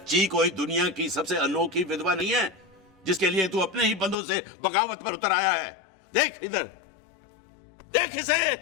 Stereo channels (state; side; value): drops out; right; at 4.2 s